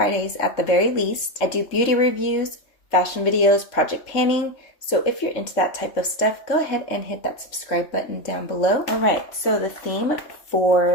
at the very least. I do beauty reviews, fashion videos, project panning. So if you're into that type of stuff, go ahead and hit that subscribe button down below. Alright, so the theme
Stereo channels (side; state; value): right; late; 3.6 ms